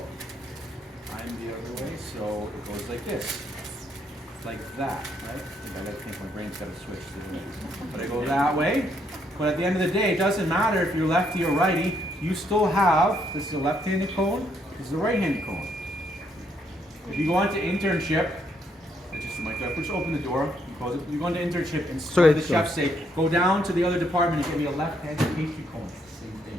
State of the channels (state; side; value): normal; both; correlation 0.73